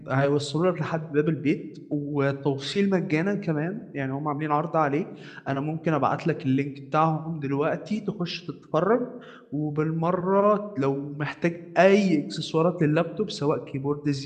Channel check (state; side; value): identical; both; correlation 1.00